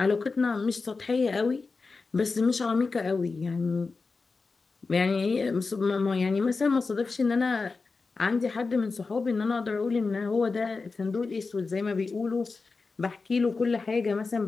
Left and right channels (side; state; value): right; quieter; 4.2 dB